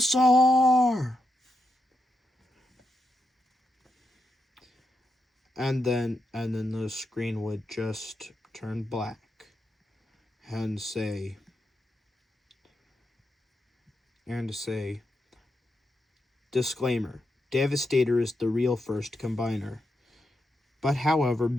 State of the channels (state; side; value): normal; both; correlation 0.85